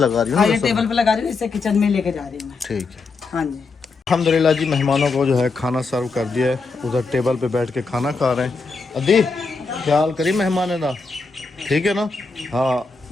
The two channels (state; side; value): quieter; right; 4.2 dB